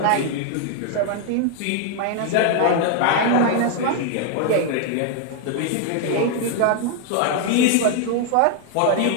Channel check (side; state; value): both; different; correlation 0.00